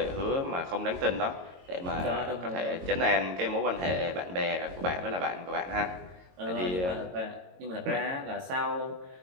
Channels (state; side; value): late; left; 22 ms